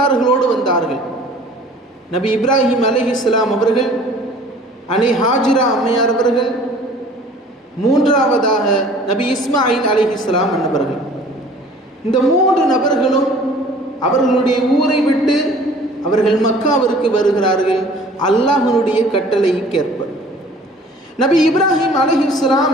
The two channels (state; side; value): normal; both; correlation 0.49